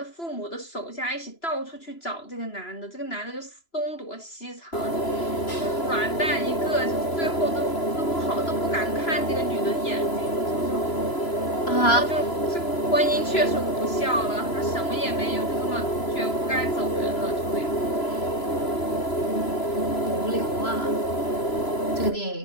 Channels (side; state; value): right; late; 3.0 ms